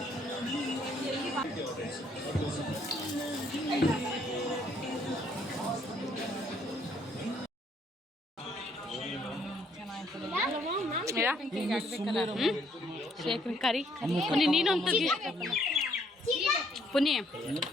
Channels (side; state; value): both; normal; correlation 0.67